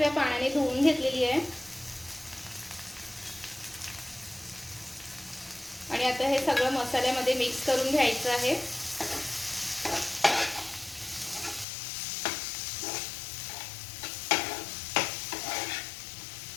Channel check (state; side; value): drops out; right; at 11.7 s